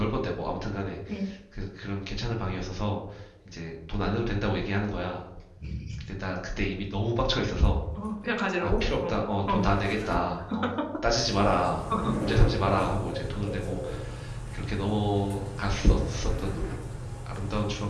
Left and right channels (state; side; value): identical; both; correlation 1.00